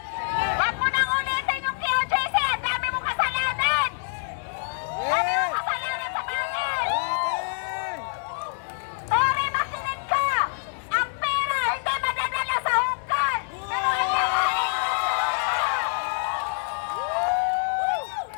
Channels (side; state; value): right; silent; digital silence